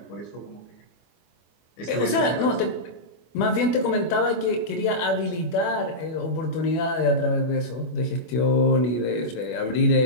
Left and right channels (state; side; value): late; right; 24 ms